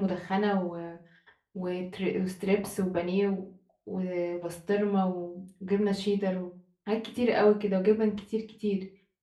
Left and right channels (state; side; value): identical; both; correlation 1.00